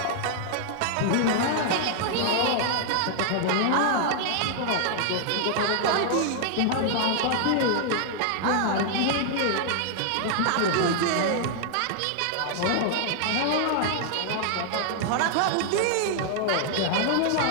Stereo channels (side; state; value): both; different; correlation 0.00